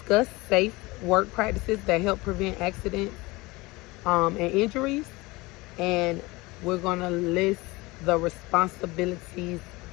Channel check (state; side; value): quieter; right; 22.5 dB